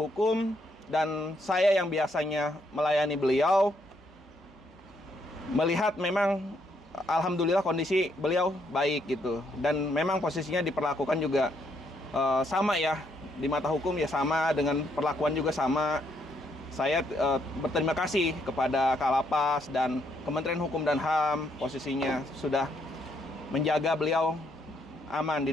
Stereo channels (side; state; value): both; normal; correlation 0.73